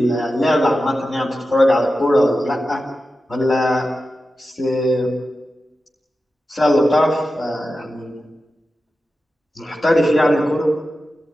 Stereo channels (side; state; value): both; normal; correlation 0.92